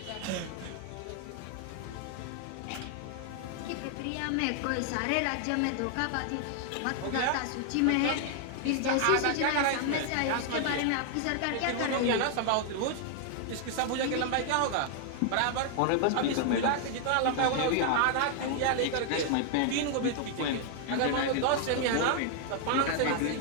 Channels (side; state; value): both; different; correlation 0.00